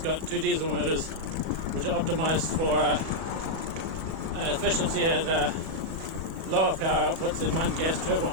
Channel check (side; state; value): left; late; 37 ms